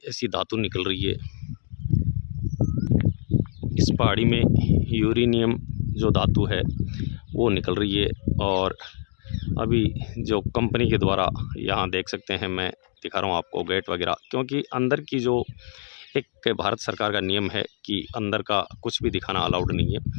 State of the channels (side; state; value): right; silent; digital silence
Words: ऐसी धातु निकल रही है। इस पहाड़ी में यूरेनियम जो धातु है वो निकल रही है, और अभी जो कंपनी के द्वारा यहाँ देख सकते हैं, मैं दिखा रहा हूँ आपको गेट वगैरह, क्योंकि अंदर की जो एक भारत सरकार का नियम है कि अंदर का कुछ भी दिखाना अलाउड नहीं है,